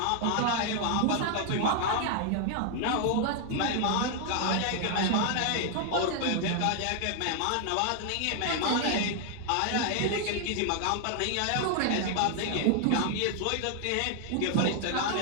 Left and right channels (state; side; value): different; both; correlation 0.00